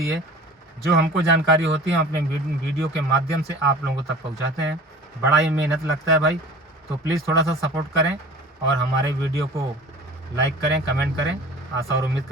है, जो हमको जानकारी होती है, हम अपने वीडियो के माध्यम से आप लोगों तक पहुंचाते हैं। बड़ा ही मेहनत लगता है भाई, तो प्लीज़ थोड़ा सा सपोर्ट करें और हमारे वीडियो को लाइक करें, कमेंट करें। आशा और उम्मीद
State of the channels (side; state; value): both; normal; correlation 0.42